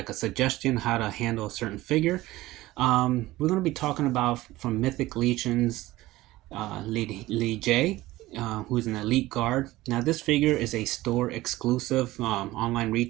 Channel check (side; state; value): left; quieter; 17.6 dB